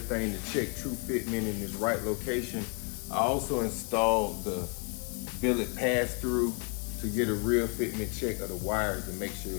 to check true fitment in its right location. I also installed the billet pass-through to get a real fitment check of the wires to make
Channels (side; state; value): right; quieter; 36.9 dB